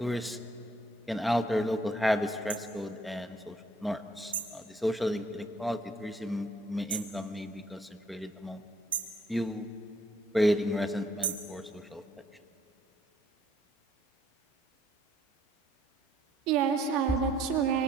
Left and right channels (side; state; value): both; normal; correlation 0.65